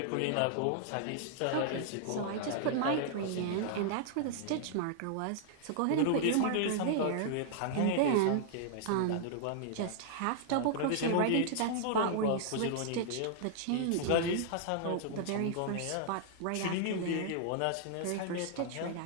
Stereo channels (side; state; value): both; different; correlation -0.01